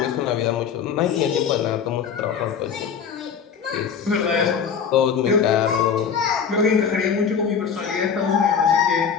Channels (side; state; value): right; quieter; 7.0 dB